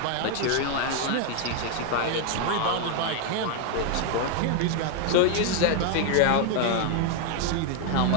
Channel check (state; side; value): different; both; correlation 0.01